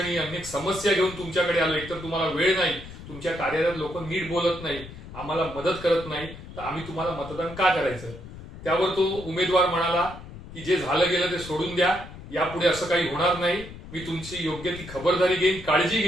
अनेक समस्या घेऊन तुमच्याकडे आलो. एकतर तुम्हाला वेळ नाही, तुमच्या कार्यालयात लोक नीट बोलत नाही, आम्हाला मदत करत नाही, तर आम्ही तुम्हाला मतदान का करायचं. त्यावर तो उमेदवार म्हणाला की जे झालं गेलं ते सोडून द्या, यापुढे असं काही होणार नाही, मी तुमची योग्य ती खबरदारी घेईन, काळजी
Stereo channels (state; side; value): noise; left; rumble, 14 dB below the sound